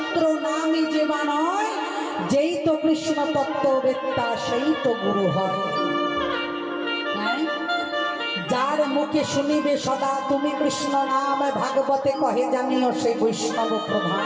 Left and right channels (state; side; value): identical; both; correlation 1.00